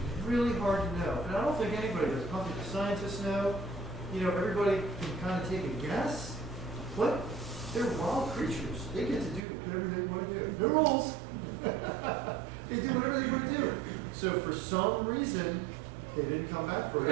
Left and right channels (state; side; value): drops out; left; at 9.4 s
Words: really hard to know. And I don't think anybody does. I don't think the scientists know. You know, everybody can kind of take a guess. But they're wild creatures. They get to do whatever they want to do. No rules. They do whatever they want to do. So for some reason, they didn't come back for a